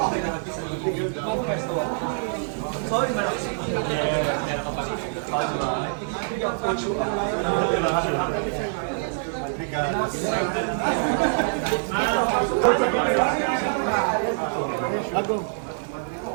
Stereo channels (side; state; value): left; silent; 59 dB below the other